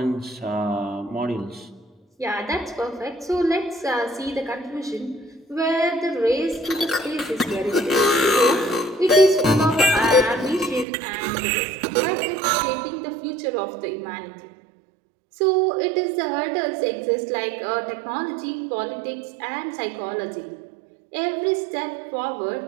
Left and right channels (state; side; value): drops out; left; at 10.9 s